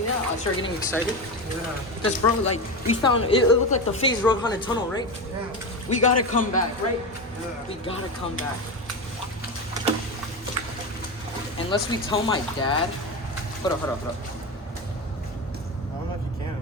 that? I started getting excited. Yeah. Because, bro, like, we found, it looked like the Phase Road Haunted Tunnel, right? Yeah. We gotta come back, right? Yeah. We gotta come back. Unless we tell my dad. Hold up. I don't know if you can.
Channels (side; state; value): both; normal; correlation 0.19